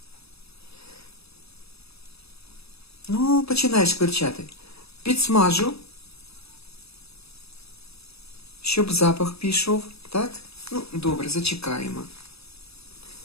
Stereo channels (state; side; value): late; right; 0.78 ms